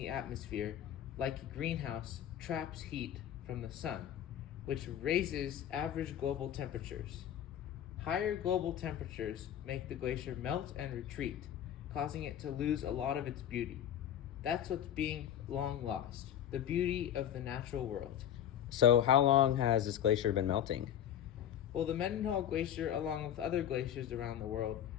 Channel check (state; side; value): quieter; right; 10.3 dB